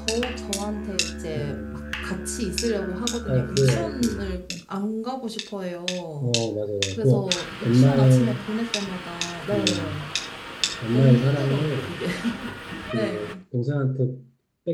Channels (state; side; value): identical; both; correlation 1.00